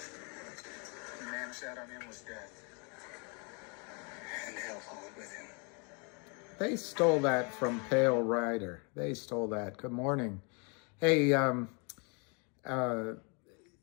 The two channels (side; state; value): right; quieter; 34.3 dB